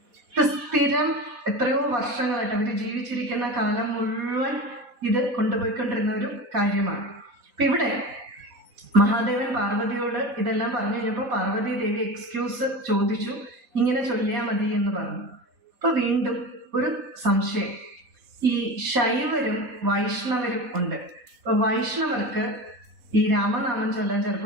ഇത് സ്ഥിരം എത്രയോ വർഷങ്ങളായിട്ട് അവർ ജീവിച്ചിരിക്കുന്ന കാലം മുഴുവൻ ഇത് കൊണ്ടുപോയിക്കൊണ്ടിരുന്ന ഒരു കാര്യമാണ്. അപ്പൊ ഇവിടെ മഹാദേവൻ പാർവതിയോട് ഇതെല്ലാം പറഞ്ഞു കഴിഞ്ഞപ്പോൾ പാർവതി ദേവി എക്സ്ക്യൂസ് ചോദിച്ചു, ഇങ്ങനെ ചൊല്ലിയാൽ മതി എന്ന് പറഞ്ഞു. അപ്പൊ വീണ്ടും ഒരു സംശയം, ഈ ശൈവരും വൈഷ്ണവരും ഉണ്ട്. അപ്പൊ വൈഷ്ണവർക്ക് ഈ രാമനാമം ചൊല്ലാൻ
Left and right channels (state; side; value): late; left; 3.7 ms